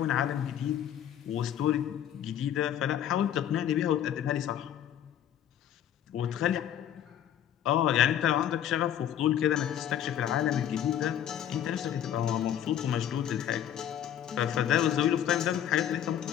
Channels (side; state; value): right; quieter; 10.4 dB